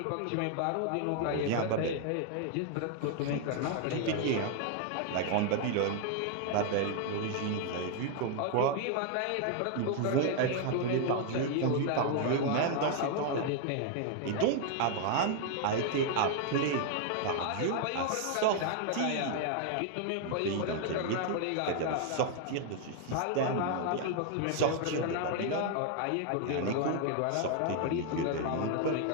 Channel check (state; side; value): different; both; correlation 0.00